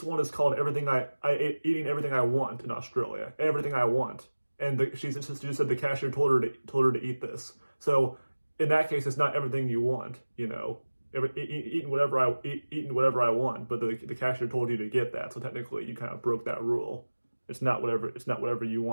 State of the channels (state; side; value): inverted; both; correlation -1.00